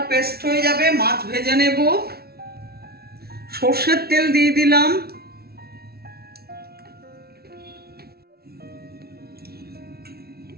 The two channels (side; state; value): left; late; 0.45 ms